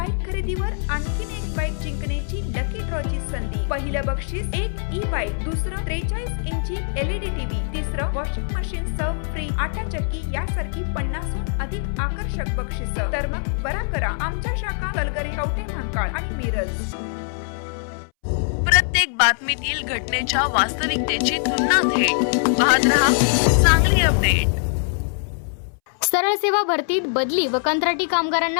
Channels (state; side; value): silent; right; 64 dB below the other